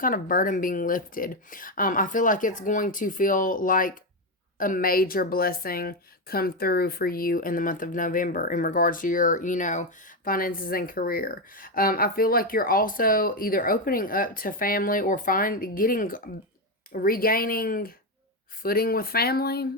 of burden being lifted. I feel like it's going to feel like a major blessing come through for you in the month of November in regards to your, finances and career. I feel like you're also either opening up to family or regaining footing with family.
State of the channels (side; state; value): both; normal; correlation 0.09